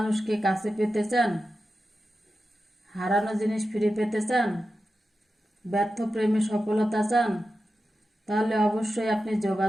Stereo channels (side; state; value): both; normal; correlation 0.92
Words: কাছে পেতে চান, হারানো জিনিস ফিরে পেতে চান, ব্যর্থ প্রেমে সফলতা চান, তাহলে অবশ্যই আপনি